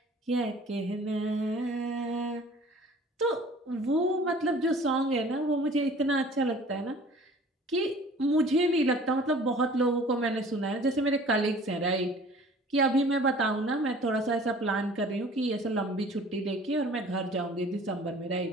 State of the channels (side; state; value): both; normal; correlation 0.48